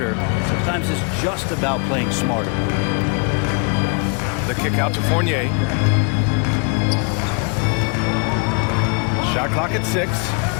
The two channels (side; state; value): right; quieter; 35.2 dB